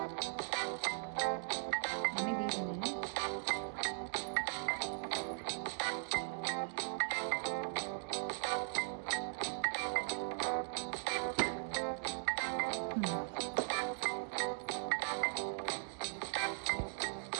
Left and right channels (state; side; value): silent; left; digital silence